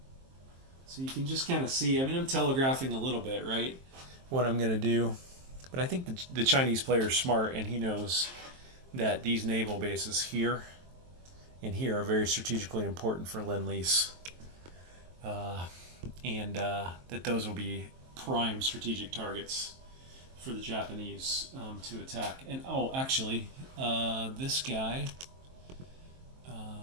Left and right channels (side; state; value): left; late; 23 ms